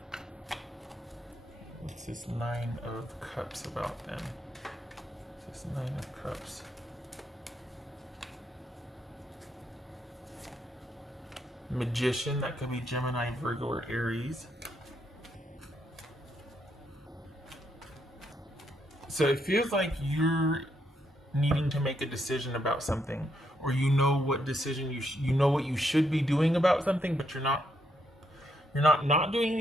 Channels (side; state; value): both; normal; correlation 0.77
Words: What's this 9 of Cups about then? What's this 9 of Cups? Magician, that could be Gemini, Virgo, or Aries. So it feels like you're needing to make a decision about something, or you know what decision you know what you should be doing about something, but you're not doing